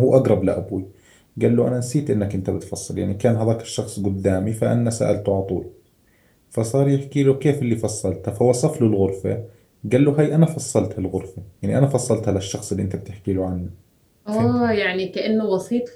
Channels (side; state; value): both; identical; correlation 1.00